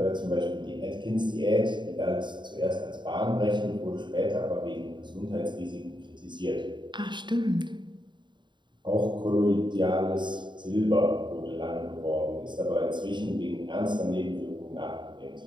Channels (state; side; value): late; left; 0.22 ms